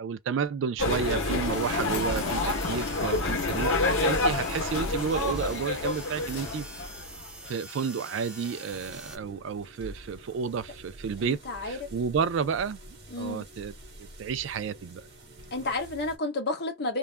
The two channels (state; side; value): normal; both; correlation -0.01